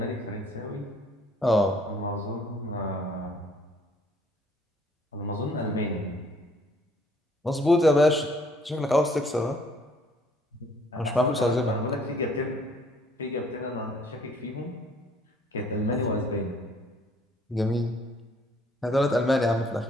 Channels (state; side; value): normal; both; correlation 0.61